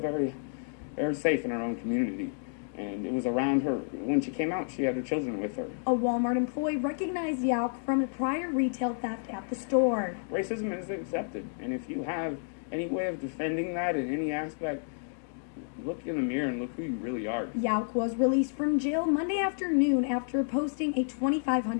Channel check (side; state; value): right; silent; digital silence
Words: very safe in her own community. And it was around her. When she came out, she had her children with her. A Walmart employee recognized Yauk from a prior retail theft at the store. Racism is accepted, and if you have any way of defending that in any aspect, look in the mirror and look who you really are. Yauk was released from jail Monday afternoon after posting a